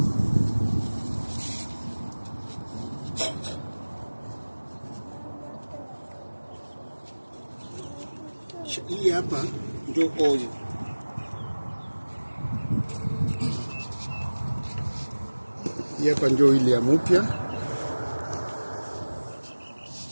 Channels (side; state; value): both; inverted; correlation -1.00